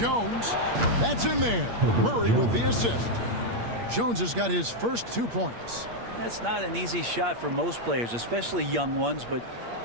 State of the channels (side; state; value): left; late; 8.6 ms